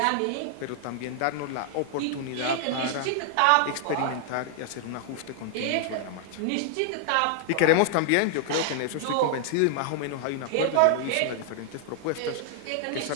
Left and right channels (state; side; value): different; both; correlation 0.00